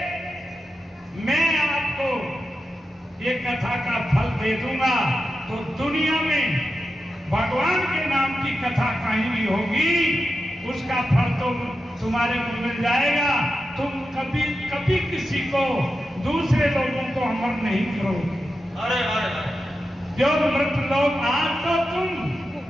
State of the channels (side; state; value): both; normal; correlation 0.90